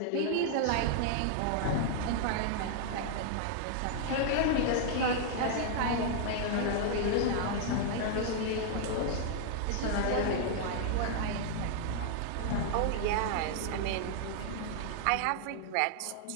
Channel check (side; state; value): both; different; correlation 0.00